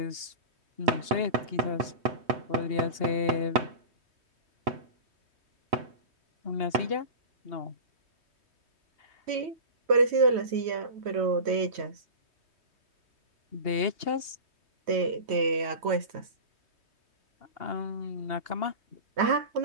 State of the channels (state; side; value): late; left; 3.2 ms